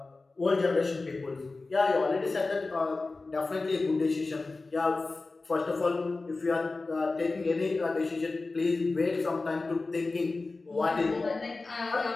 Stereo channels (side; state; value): right; quieter; 3.5 dB